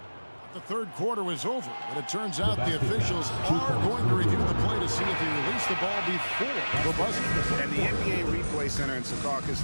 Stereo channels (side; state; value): both; inverted; correlation -1.00